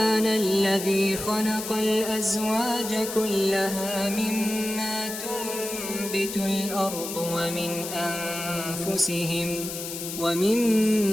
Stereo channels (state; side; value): noise; left; hiss, 7 dB below the sound